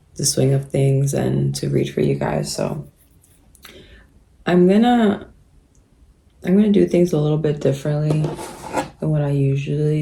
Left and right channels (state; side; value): identical; both; correlation 1.00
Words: the swing of things and to read for you guys. So I'm gonna do things a little bit differently than what I usually